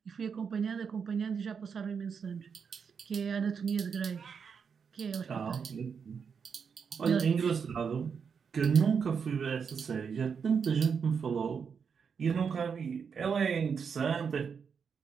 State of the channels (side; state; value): left; quieter; 6.3 dB